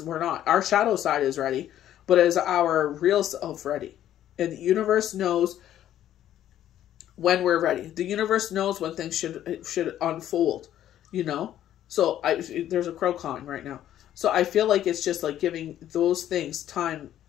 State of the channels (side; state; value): right; quieter; 11.7 dB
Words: we're not. Our shadow side is ready, but is our real self ready? And the universe knows when we're ready. The universe knows when things should unfold, you know? So there's a crow cawing right now. So I feel like it's just like giving those things time